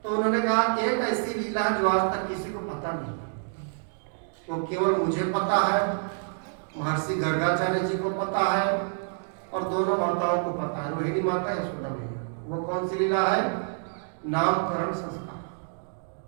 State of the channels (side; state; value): left; silent; 60 dB below the other